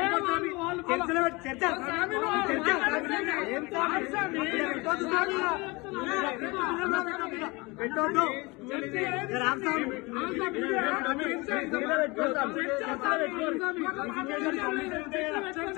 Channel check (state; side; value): quieter; right; 25.1 dB